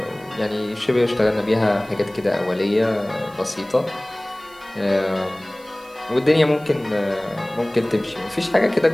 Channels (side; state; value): right; noise; hiss, 25 dB below the sound